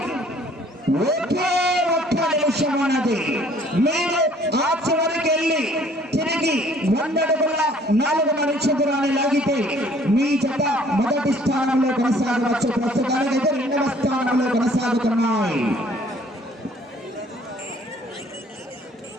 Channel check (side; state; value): both; normal; correlation 0.57